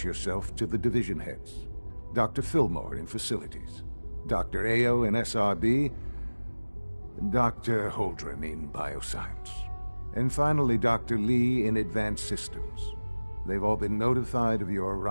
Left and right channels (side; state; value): both; inverted; correlation -1.00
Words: yourself to the division heads. Dr. Fillmore in Facilities, Dr. Ao in SRB, Dr. Holdren in Bioscience, and finally Dr. Lee in Advanced Systems. They've all been notified of your